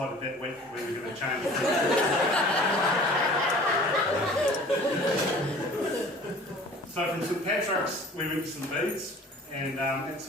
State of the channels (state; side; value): normal; both; correlation 0.46